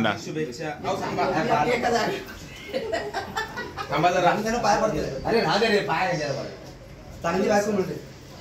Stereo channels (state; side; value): identical; both; correlation 1.00